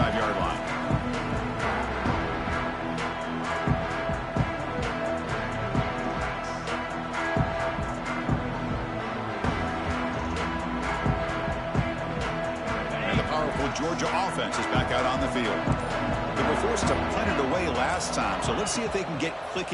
line. And the powerful Georgia offense is back out on the field. They were forced to punt it away last time, so let's see if they can get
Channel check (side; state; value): both; identical; correlation 1.00